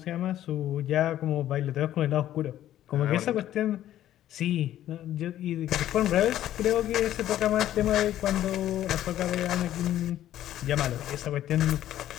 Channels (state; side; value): quieter; right; 12.5 dB